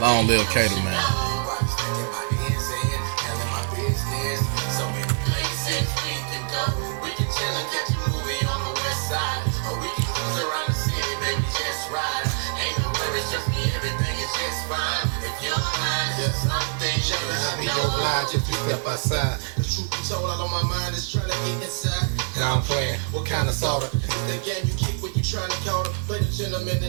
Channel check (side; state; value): left; silent; 62 dB below the other